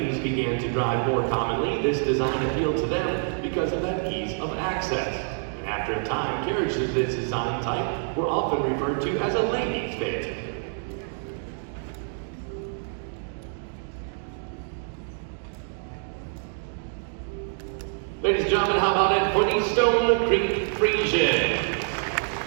began to drive more commonly, this design appealed to them because of that ease of access. And after a time, carriages of this design type were often referred to as a ladies' phaeton. Ladies and gentlemen, how about it for the Stone Creek Friesian?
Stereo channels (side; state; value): left; silent; 61 dB below the other